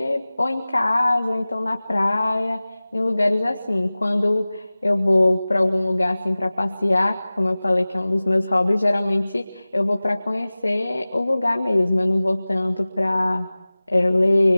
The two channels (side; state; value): both; inverted; correlation -0.98